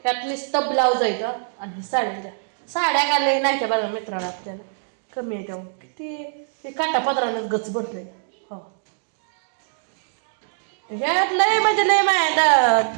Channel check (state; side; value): silent; left; digital silence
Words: त्यात नुसतं ब्लाऊज आहे का आणि साड्या घालले नाही त्या बघा मित्राला आपल्याला कमी आहे त्यामुळे किती ते काटापत्रानं गच भरलंय हो ह्यात लय म्हणजे लय माया